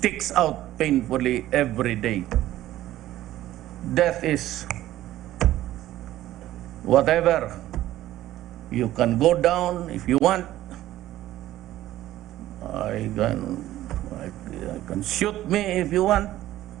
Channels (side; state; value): left; quieter; 14.4 dB